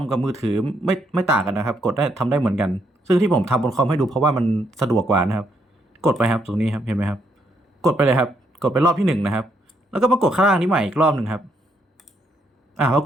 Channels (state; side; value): normal; both; correlation 0.74